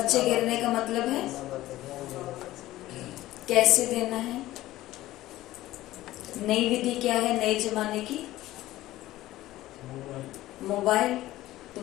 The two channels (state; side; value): quieter; right; 16.0 dB